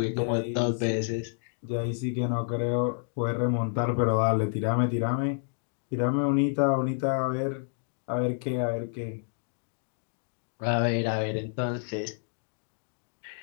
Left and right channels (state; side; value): silent; right; digital silence